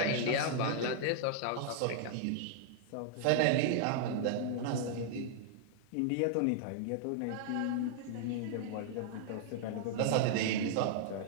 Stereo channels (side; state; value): both; different; correlation -0.01